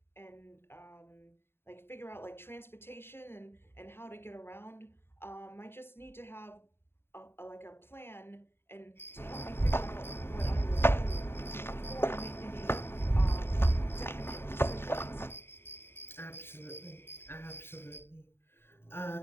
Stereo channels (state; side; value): late; right; 0.11 ms